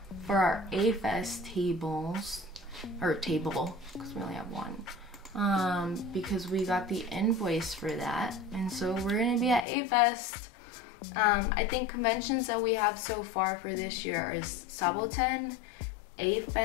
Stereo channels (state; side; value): drops out; right; at 9.7 s